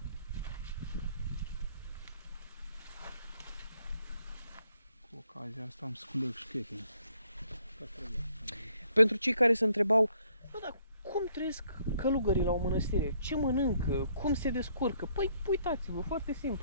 Cu ocazia asta am sculec șchete. Pentru cei care se întrebau, bă, dar cum trăiesc călugării la o mănăstire? Ce mănâncă? Cum se descurcă? Păi uitați-vă, foarte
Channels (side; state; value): both; inverted; correlation -0.67